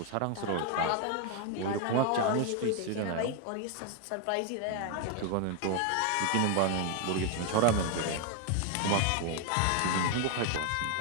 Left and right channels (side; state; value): both; different; correlation 0.01